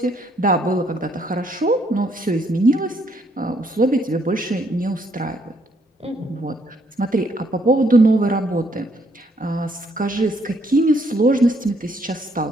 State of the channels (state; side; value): normal; both; correlation 0.70